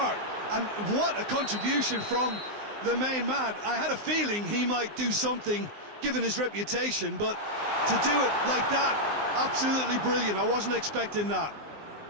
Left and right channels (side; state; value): left; late; 19 ms